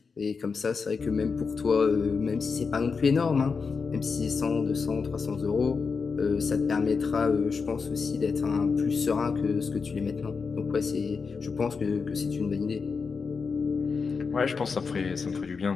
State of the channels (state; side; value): quieter; right; 5.1 dB